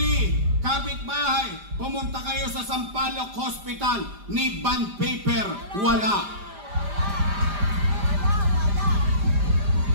kapitbahay, pumunta kayo sa Sampaloc Hospital, ni bond paper, wala.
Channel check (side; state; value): left; late; 5.0 ms